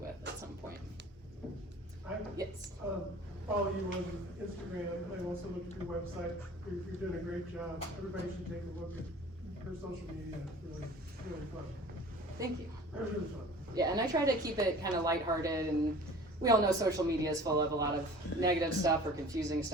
at some point. Yes. Follow you on Instagram. I also look at your website. You're doing a great job. Everybody should take a look at your social media. It's really fun. Thank you. Really fun. Yeah, and I try to keep it kind of lighthearted, and we all know social media is full of a lot of negative stuff or confusing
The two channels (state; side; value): normal; both; correlation 0.44